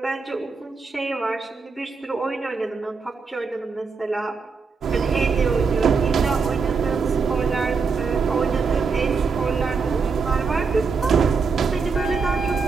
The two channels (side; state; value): left; quieter; 5.0 dB